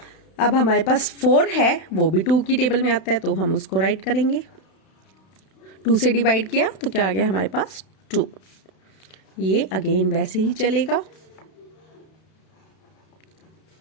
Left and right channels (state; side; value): late; right; 32 ms